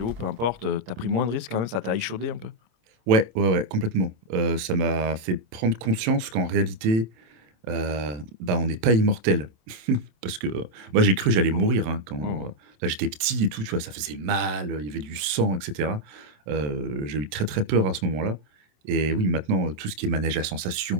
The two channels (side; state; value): left; late; 27 ms